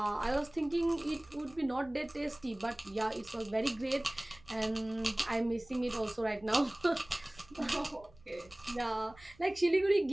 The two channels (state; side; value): noise; right; rumble, 25 dB below the sound